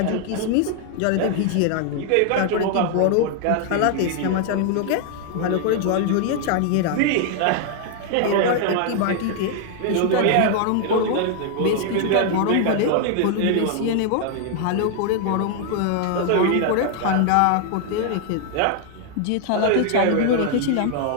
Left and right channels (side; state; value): both; different; correlation 0.00